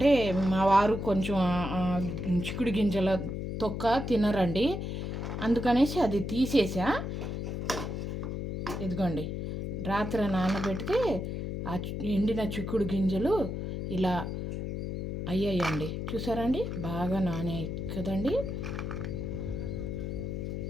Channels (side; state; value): left; noise; hum, 4 dB below the sound